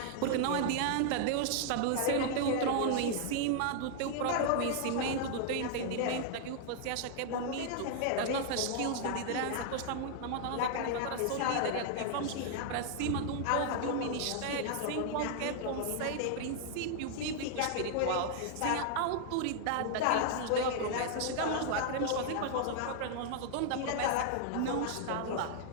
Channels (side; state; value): both; different; correlation 0.00